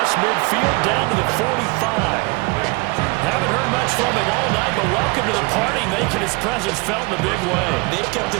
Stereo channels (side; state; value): left; quieter; 27.0 dB